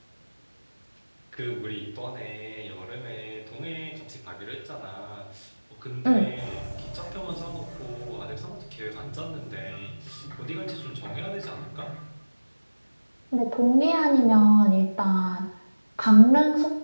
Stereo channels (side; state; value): both; inverted; correlation -1.00